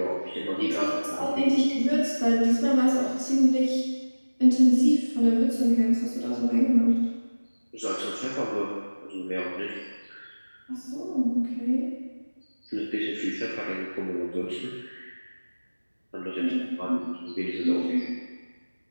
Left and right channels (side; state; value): both; inverted; correlation -1.00